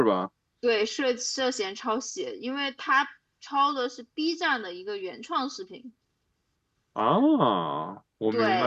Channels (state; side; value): identical; both; correlation 1.00